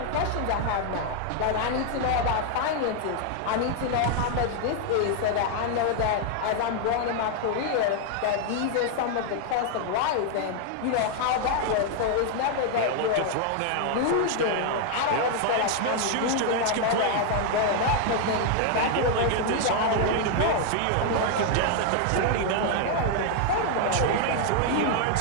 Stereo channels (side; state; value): both; different; correlation 0.00